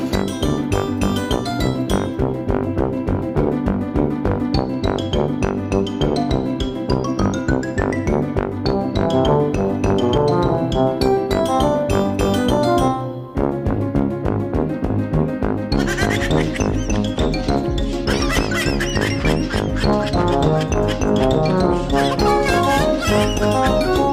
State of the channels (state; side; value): identical; both; correlation 1.00